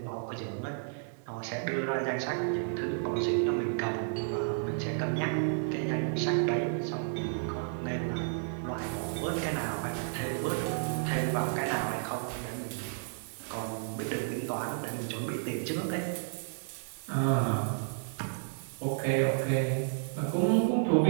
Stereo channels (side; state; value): left; silent; 56 dB below the other